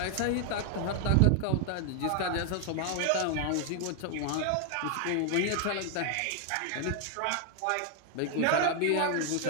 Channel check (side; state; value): both; different; correlation 0.00